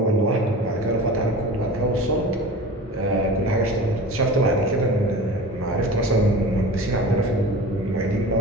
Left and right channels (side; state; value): both; normal; correlation 0.36